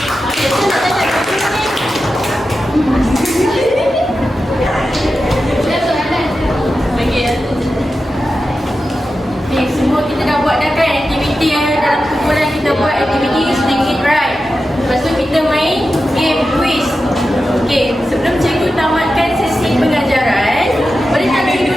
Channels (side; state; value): both; normal; correlation 0.91